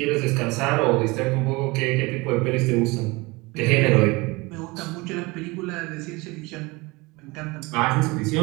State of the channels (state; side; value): quieter; left; 24.1 dB